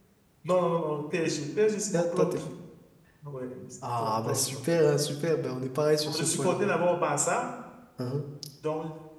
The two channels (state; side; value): identical; both; correlation 1.00